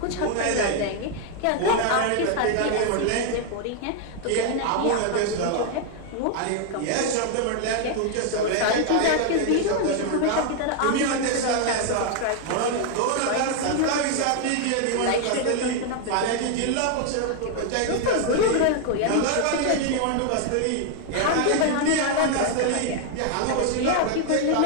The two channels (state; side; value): different; both; correlation 0.00